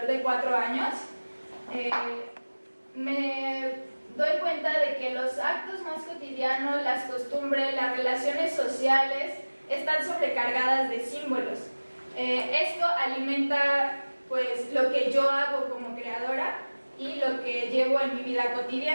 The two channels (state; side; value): inverted; both; correlation -1.00